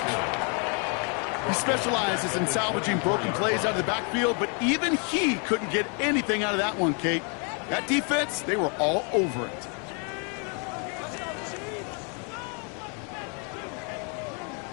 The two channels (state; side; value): quieter; right; 37.4 dB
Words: He specializes in salvaging broken plays out of the backfield, but even he couldn't get anything out of that one, Kate. That defense, they were all over it.